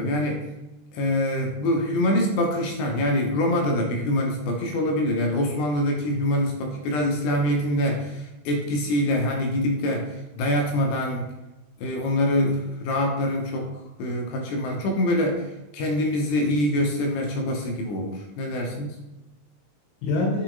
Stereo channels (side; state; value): right; late; 20 ms